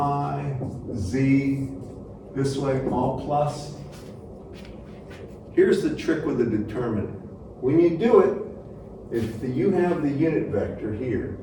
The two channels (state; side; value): identical; both; correlation 1.00